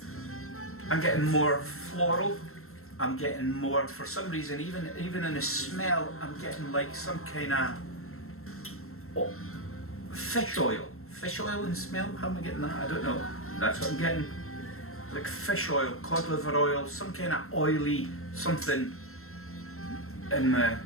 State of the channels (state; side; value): late; right; 0.62 ms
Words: I'm getting more floral. I'm getting more, for some reason, even in the smell, I'm getting like some kind of fish oil. Fish oil in smell? How am I getting that? I don't know. That's what I'm getting. Like fish oil, cod liver oil, some kind of oily something in my